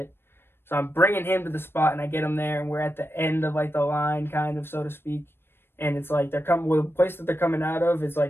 So I'm bringing him to the spot, and I get him there, and we're at the end of, like, the line, kind of, so to speak. And it's, like, the place that they're coming out of is,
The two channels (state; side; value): late; right; 0.11 ms